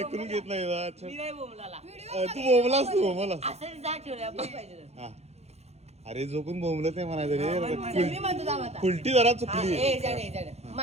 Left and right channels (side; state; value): left; late; 0.31 ms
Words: घेत नाही. तू बोंबलास. तू बोंबलास. अरे जो कोण बोंबलत नाही म्हणायचं रे. उलटी जरा चुकली.